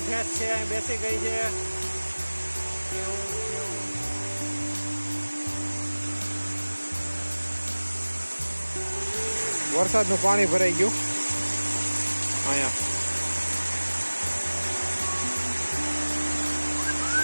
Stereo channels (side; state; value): both; inverted; correlation -1.00